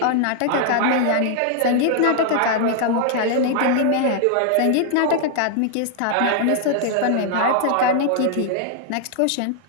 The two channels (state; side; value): different; both; correlation 0.00